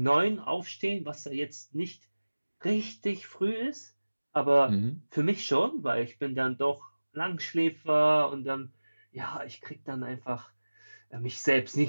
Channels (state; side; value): inverted; both; correlation -1.00